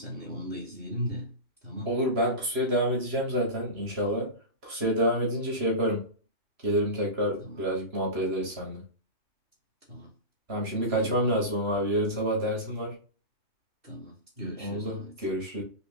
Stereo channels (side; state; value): left; late; 3.0 ms